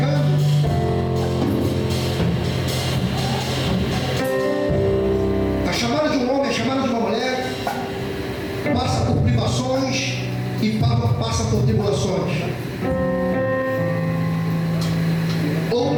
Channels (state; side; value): identical; both; correlation 1.00